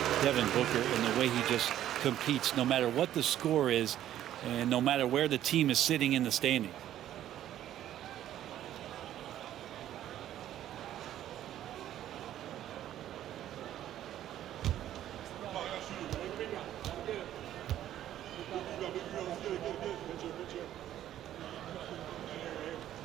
Devin Booker and the way he just competes, no matter what the score is and no matter where the team is sitting in the standing.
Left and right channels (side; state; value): left; quieter; 12.0 dB